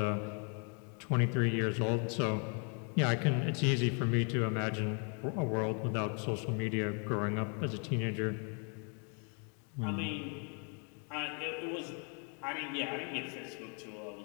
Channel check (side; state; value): right; quieter; 39.1 dB